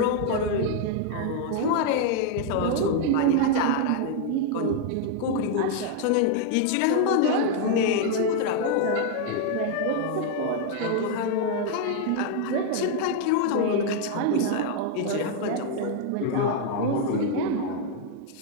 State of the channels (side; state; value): both; different; correlation 0.00